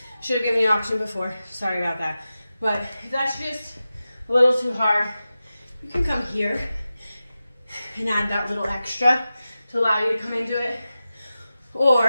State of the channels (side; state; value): both; inverted; correlation -0.93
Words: should have given you an option before. Sorry about that. But if that's just a little too hard, you can come here and add that little extra to allow you to come into it.